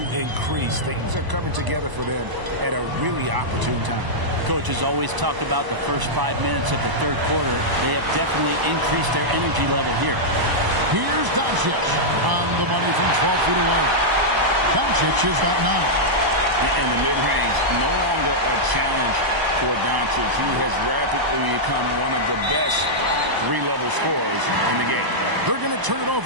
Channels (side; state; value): left; late; 1.0 ms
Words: increase. Things are coming together for them at a really opportune time. Coach has always talked about the first 5 minutes of the third quarter. They have definitely increased their energy level here. Here's Doncic on the money from 12 feet away. Doncic has got 9. In the mid-range, no longer a challenge for Doncic. He has rapidly become one of the best three-level scorers in the game. They're going to turn it